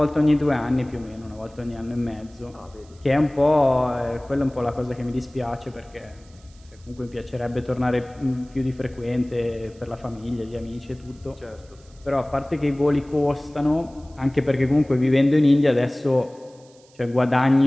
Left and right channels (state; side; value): noise; right; hiss, 29 dB below the sound